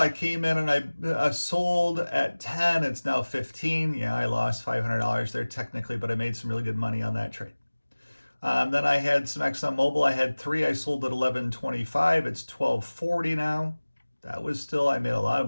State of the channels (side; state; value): both; inverted; correlation -1.00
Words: came in and I sold at 10. It's now 15. Yeah, I lost $500 there technically, but I made some really good money on that trade. Then I had some ExxonMobil. I had 3. I sold at 11.25. It's 12.40 now. That was still, I made a lot of